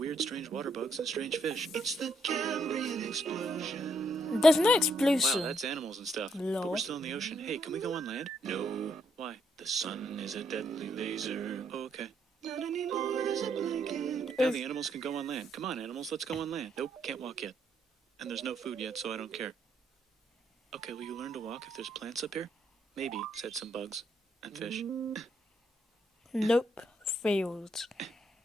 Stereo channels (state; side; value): normal; both; correlation 0.74